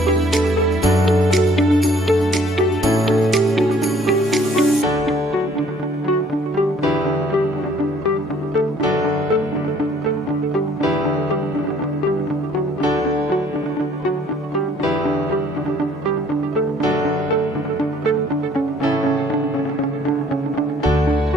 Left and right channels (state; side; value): normal; both; correlation 0.59